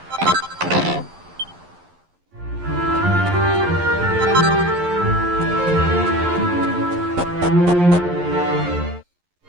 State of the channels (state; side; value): late; left; 11 ms